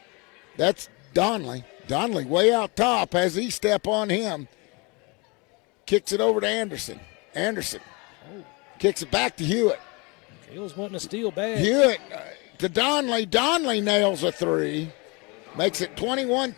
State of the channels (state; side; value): quieter; right; 28.5 dB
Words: That's Donley. Donley way out top. Has E-step on him. Kicks it over to Anderson. Anderson kicks it back to Hewitt. Hill's wanting to steal bad. Hewitt to Donley. Donley nails a three. Makes it